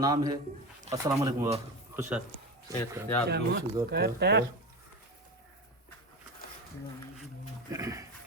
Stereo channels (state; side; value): normal; both; correlation 0.24